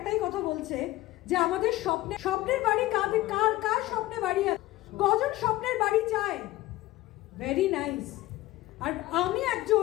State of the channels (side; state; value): right; quieter; 17.1 dB